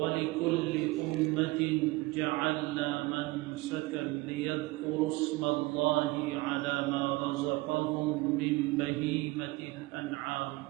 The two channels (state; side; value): quieter; left; 21.7 dB